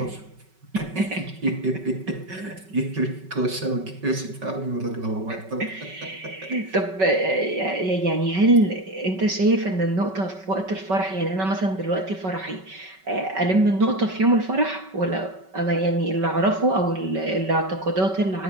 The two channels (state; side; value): late; left; 5.3 ms